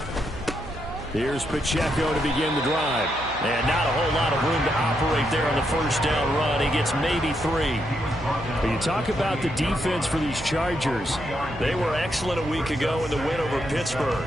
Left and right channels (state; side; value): noise; right; hum, 15 dB below the sound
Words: Here's Pacheco to begin the drive. And not a whole lot of room to operate there on the first down run. He gets maybe 3. But you talk about the defense for these Chargers. They were excellent a week ago in the win over Pittsburgh.